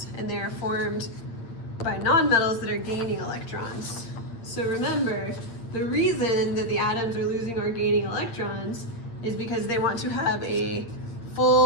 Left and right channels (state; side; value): late; right; 8.7 ms